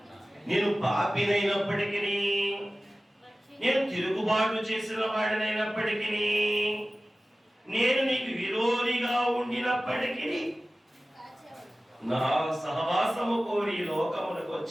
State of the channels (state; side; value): normal; both; correlation 0.96